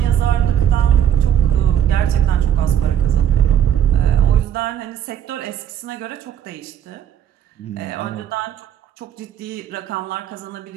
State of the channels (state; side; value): quieter; left; 9.7 dB